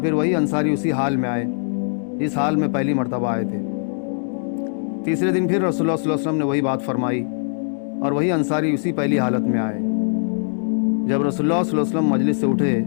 وہی انصاری اسی حال میں آئے جس حال میں پہلی مرتبہ آئے تھے۔ تیسرے دن پھر رسول اللہ صلی اللہ علیہ وسلم نے وہی بات فرمائی اور وہی انصاری اسی پہلی حالت میں آئے۔ جب رسول اللہ صلی اللہ علیہ وسلم مجلس سے اٹھے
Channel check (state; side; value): silent; right; digital silence